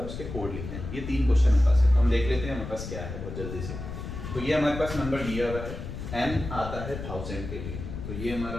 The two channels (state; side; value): noise; left; rumble, 8 dB below the sound